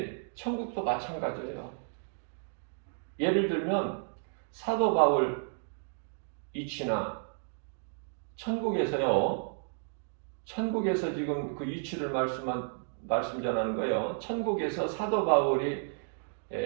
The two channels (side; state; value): left; silent; digital silence